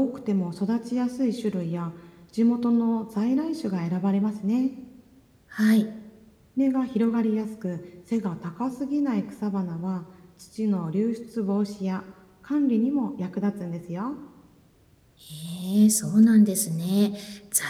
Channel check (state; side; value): identical; both; correlation 1.00